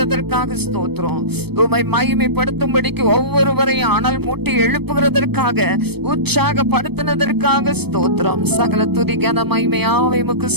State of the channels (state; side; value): late; left; 0.97 ms